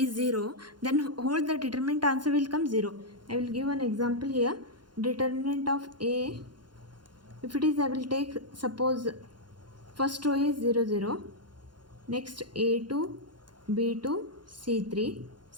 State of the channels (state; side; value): late; left; 0.71 ms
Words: 0, then whole the determinant answer will come 0. I will give an example here. Determinant of A, if it is, I will take, suppose first row is 0 0, next A2 B2 C3